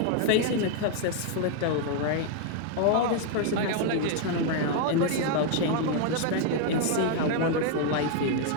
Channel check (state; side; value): different; both; correlation 0.00